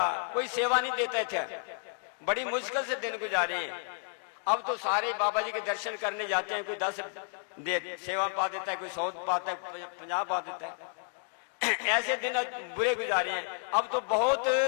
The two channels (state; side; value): silent; right; 57 dB below the other